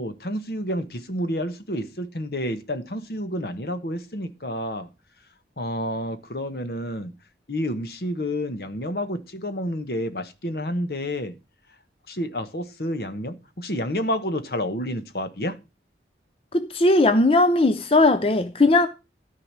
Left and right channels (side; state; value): both; normal; correlation 0.44